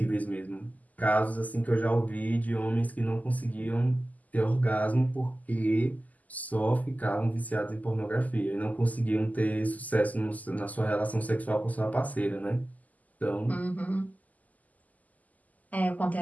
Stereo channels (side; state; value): right; late; 0.078 ms